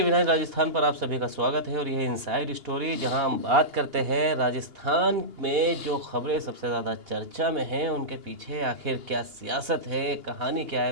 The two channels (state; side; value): late; left; 2.8 ms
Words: 9 राजस्थान पर आप सभी का स्वागत है और यह इनसाइड स्टोरी जहां हम बात करते हैं राजस्थान में जो खबरें सबसे ज़्यादा चर्चा में हैं उनके पीछे आखिर क्या सियासत है, कहानी क्या